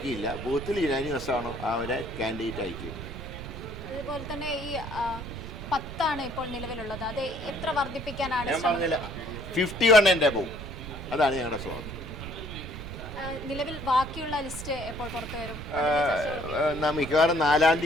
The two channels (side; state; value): right; noise; rumble, 9 dB below the sound